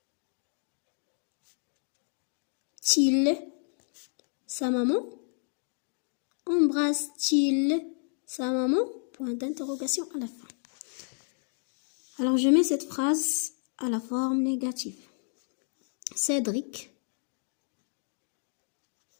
sa maman? Embrasse-t-il sa maman? Point d'interrogation à la fin. Alors, je mets cette phrase à la forme négative. Cédric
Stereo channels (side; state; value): right; silent; 57 dB below the other